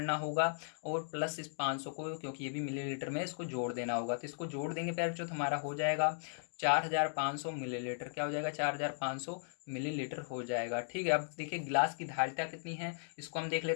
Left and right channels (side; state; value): right; silent; digital silence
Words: होगा, और प्लस इस 500 को, क्योंकि ये भी मिलीलीटर में, इसको जोड़ देना होगा। तो इसको जोड़ देंगे पहले जो हमारा हो जाएगा 4500 मिलीलीटर। क्या हो जाएगा, 4500 मिलीलीटर हो जाएगा। ठीक है, अब देखिए गिलास की धारिता कितनी है, इसको हम देख